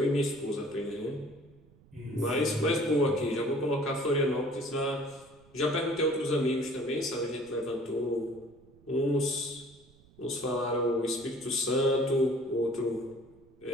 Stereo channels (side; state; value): right; noise; rumble, 27 dB below the sound